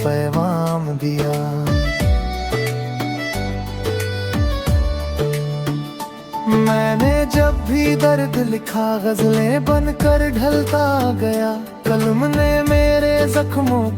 पैगाम दिया। मैंने जब भी दर्द लिखा गजलें बनकर ढलता गया, कलम ने मेरे जख्मों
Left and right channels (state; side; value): identical; both; correlation 1.00